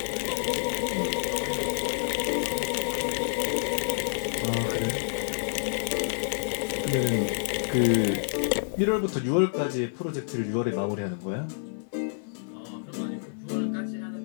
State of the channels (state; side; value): silent; right; digital silence